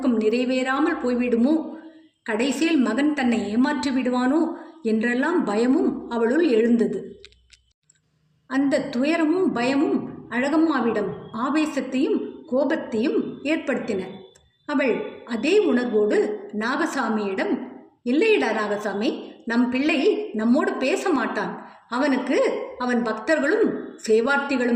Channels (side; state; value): both; identical; correlation 1.00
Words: நிறைவேறாமல் போய்விடுமோ, கடைசியில் மகன் தன்னை ஏமாற்றி விடுவானோ என்றெல்லாம் பயமும் அவளுள் எழுந்தது. அந்த துயரமும் பயமும் அழகம்மாவிடம் ஆவேசத்தையும் கோபத்தையும் ஏற்படுத்தின. அவள் அதே உணர்வோடு நாகசாமியிடம், இல்லையடா நாகசாமி, நம் பிள்ளை நம்மோடு பேச மாட்டான். அவனுக்கு அவன் பக்தர்களும்